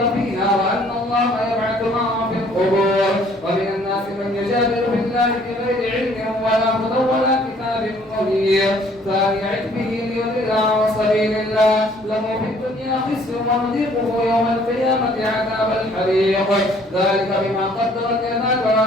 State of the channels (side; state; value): both; normal; correlation 0.59